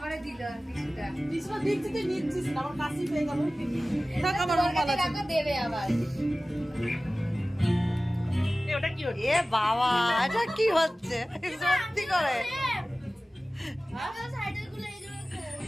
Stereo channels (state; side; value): normal; both; correlation 0.97